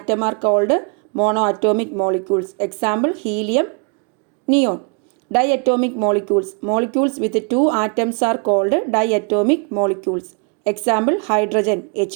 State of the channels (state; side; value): quieter; left; 37.0 dB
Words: are called mono atomic molecules. Example helium, neon. Diatomic molecules. Molecules with 2 atoms are called diatomic molecules. Example hydrogen